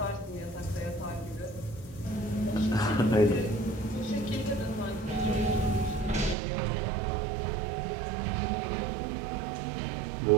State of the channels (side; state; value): left; drops out; at 6.4 s